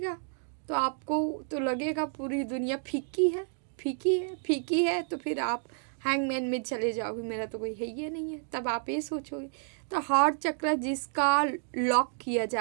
तो आपको तो लगेगा पूरी दुनिया फीकी है, फीकी है, फीकी है, तो फिर आप हैंगमैन में चले जाओगे, मेरा तो कोई है ही नहीं है, तब आप ये सोचोगे। तो हार्ट चक्र जिसका लॉक किया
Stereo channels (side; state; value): left; silent; 58 dB below the other